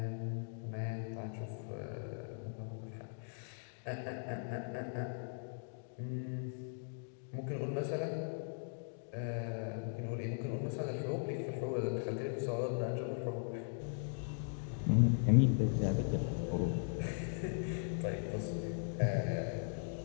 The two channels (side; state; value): right; silent; digital silence